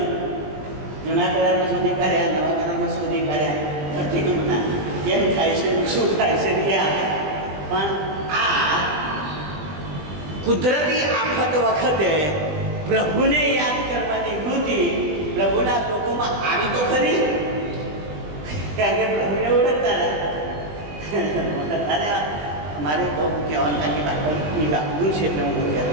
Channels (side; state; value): left; late; 20 ms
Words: જૂના કરારમાં શોધી કાઢ્યા, નવા કરારમાં શોધી કાઢ્યા, ધરતીકંપના કેમ થાય છે, શું થાય છે ત્યાં. પણ આ કુદરતી આફત વખતે પ્રભુને યાદ કરવાની વૃત્તિ પ્રભુના લોકોમાં આવી તો ખરી, કારણ કે પ્રભુને ઓળખતા હતા. અમારે બહુ કહેવાનું કારણ કે બાઇબલની વાપરું છે એટલે હું